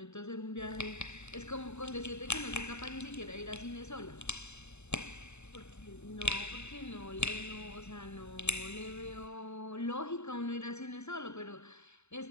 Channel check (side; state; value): right; late; 0.82 ms